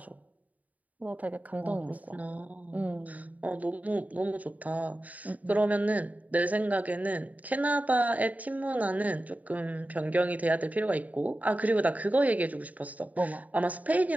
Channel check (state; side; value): late; left; 0.072 ms